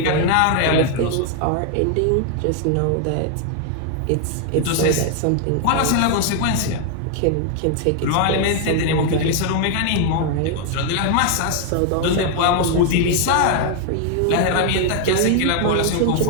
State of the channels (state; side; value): different; both; correlation 0.00